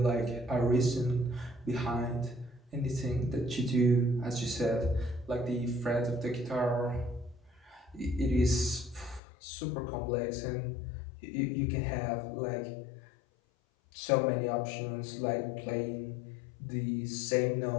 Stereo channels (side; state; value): right; drops out; at 9.2 s